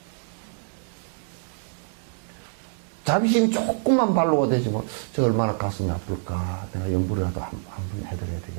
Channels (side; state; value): left; silent; digital silence